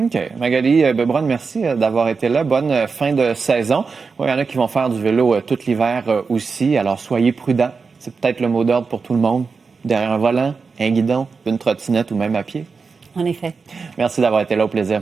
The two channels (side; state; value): left; quieter; 4.9 dB